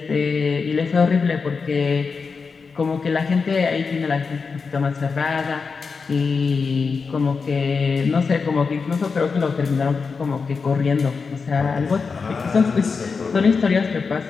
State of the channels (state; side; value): quieter; right; 5.0 dB